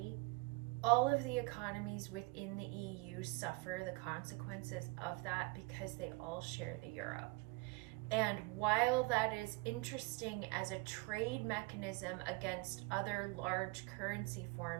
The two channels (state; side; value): quieter; left; 25.7 dB